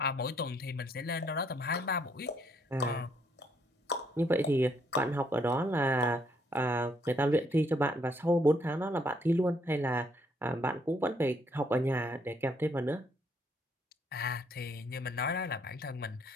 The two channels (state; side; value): normal; both; correlation 0.70